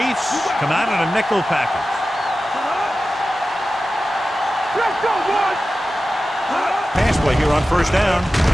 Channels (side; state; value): both; normal; correlation 0.94